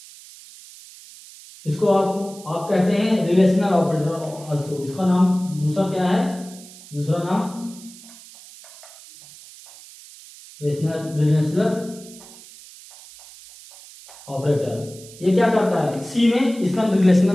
इसको आप कहते हैं रिलेशनल ऑपरेटर आल्सो। इसका नाम दूसरा क्या है, दूसरा नाम रिलेशनल ऑपरेटर। ये क्या करता है, सी में इसका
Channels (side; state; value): right; noise; hiss, 19 dB below the sound